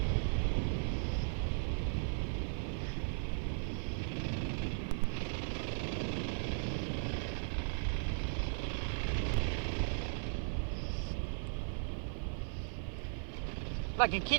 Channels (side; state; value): left; silent; digital silence